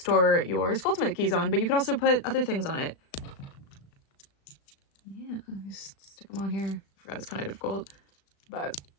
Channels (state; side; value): late; right; 36 ms